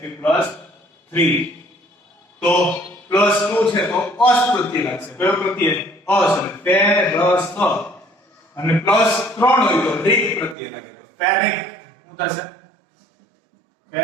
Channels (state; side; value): drops out; left; at 10.6 s